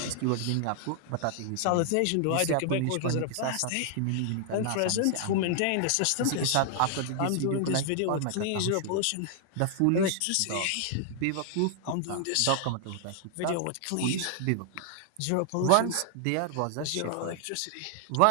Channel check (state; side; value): different; both; correlation 0.00